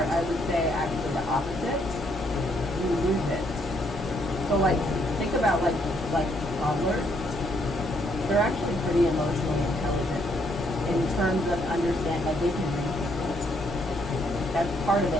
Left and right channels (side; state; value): both; normal; correlation 0.71